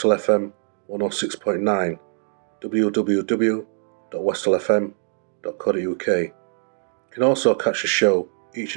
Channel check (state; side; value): silent; left; 62 dB below the other